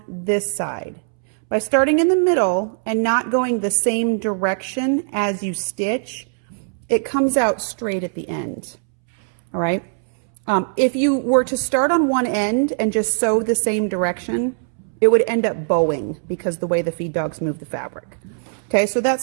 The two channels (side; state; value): left; silent; 65 dB below the other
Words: this side. By starting in the middle and not going the same direction as you stitch, it comes out straight at the end. All right. If you were to start on one end and just sew the same direction, it would end up bowing because the way the feed dogs move the fabric. Okay, so that's